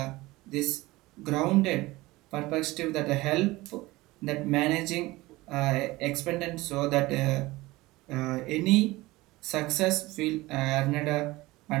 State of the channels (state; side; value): quieter; left; 20.0 dB